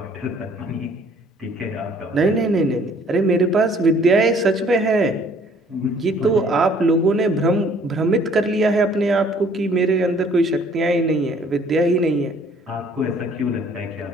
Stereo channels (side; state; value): both; normal; correlation 0.58